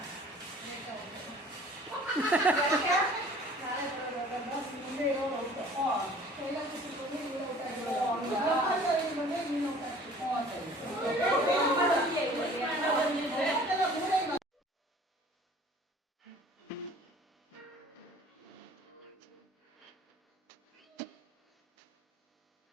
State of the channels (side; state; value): both; normal; correlation 0.50